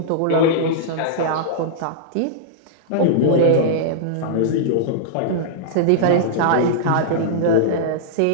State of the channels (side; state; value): both; different; correlation -0.02